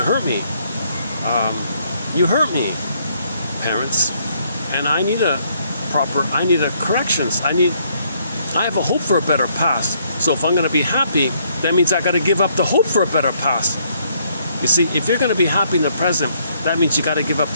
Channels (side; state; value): both; inverted; correlation -0.69